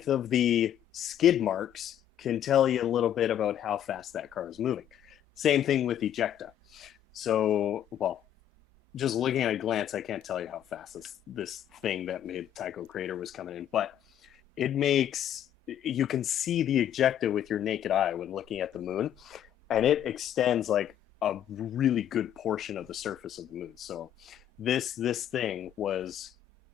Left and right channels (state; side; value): quieter; right; 10.6 dB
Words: of the skid marks can tell you a little bit about how fast that car is moving. Same thing with ejecta. So, well, just looking at a glance, I can't tell you how fast this thing that made Tycho Crater was coming in, but you can see the ejecta with your naked eye when looking at the moon, and it extends like a really good portion of the surface of the moon. So this thing was